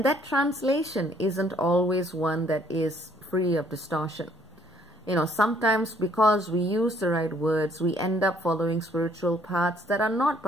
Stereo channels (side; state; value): both; normal; correlation 0.63